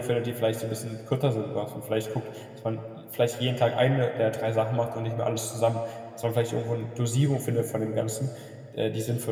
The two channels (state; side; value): identical; both; correlation 1.00